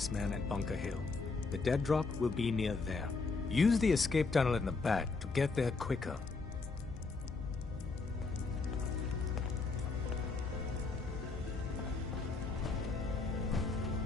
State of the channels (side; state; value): right; quieter; 4.0 dB